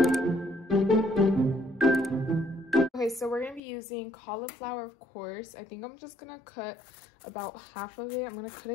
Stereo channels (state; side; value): drops out; right; at 3.6 s